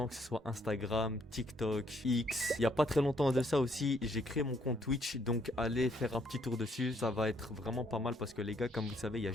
que ce soit Instagram, TikTok, X. Il y a pas très longtemps de ça aussi, j'ai créé mon compte Twitch, donc allez faire un petit tour dessus. Ça va être vraiment pas mal parce que les gars, comme vous le savez, il y a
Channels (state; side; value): normal; both; correlation 0.69